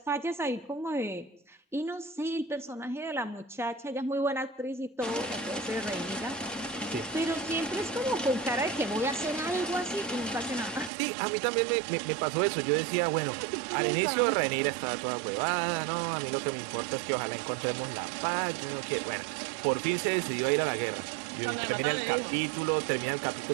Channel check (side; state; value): left; drops out; at 10.9 s